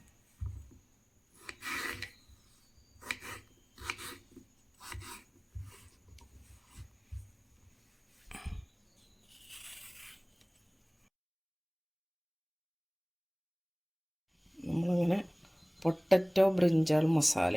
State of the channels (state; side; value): identical; both; correlation 1.00